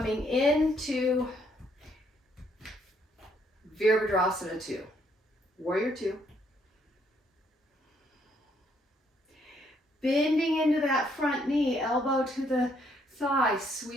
into Virabhadrasana 2, Warrior 2. Bending into that front knee, elbow to the thigh,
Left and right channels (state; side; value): normal; both; correlation 0.70